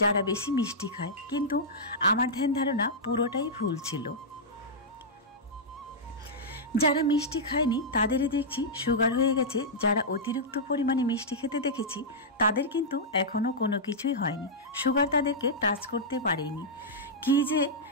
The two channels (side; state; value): both; normal; correlation -0.09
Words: যারা বেশি মিষ্টি খায়, কিন্তু আমার ধ্যান ধারণা পুরোটাই ভুল ছিল। যারা মিষ্টি খায়নি তাদেরই দেখছি সুগার হয়ে গেছে, যারা অতিরিক্ত পরিমাণে মিষ্টি খেতে দেখেছি তাদের কিন্তু এখনও কোনো কিছুই হয়নি, সুগার তাদেরকে টাচ করতে পারেনি। কি যে